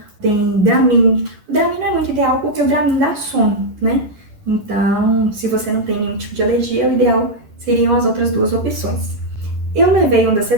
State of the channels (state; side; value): late; left; 10 ms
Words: tem Dramin. O Dramin não é muito ideal porque o Dramin dá sono, né? Então, se você não tem nenhum tipo de alergia, o ideal seriam as outras duas opções. Eu levei